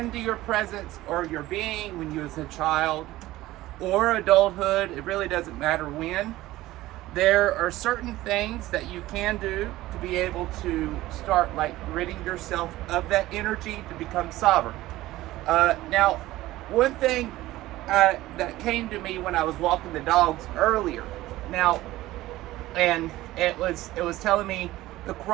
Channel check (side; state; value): left; quieter; 16.8 dB